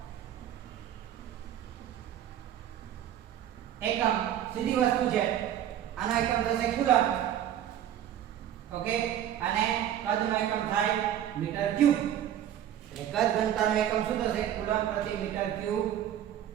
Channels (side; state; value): left; quieter; 10.9 dB